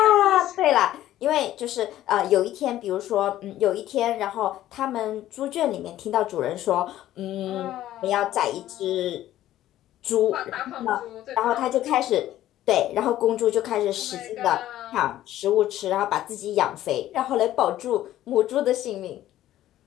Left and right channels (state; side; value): quieter; right; 13.5 dB